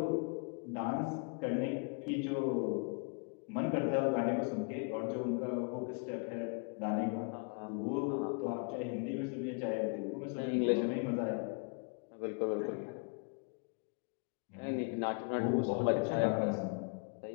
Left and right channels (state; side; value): quieter; right; 35.8 dB